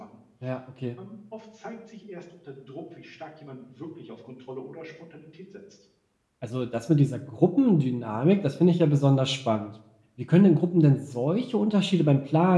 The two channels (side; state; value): both; identical; correlation 1.00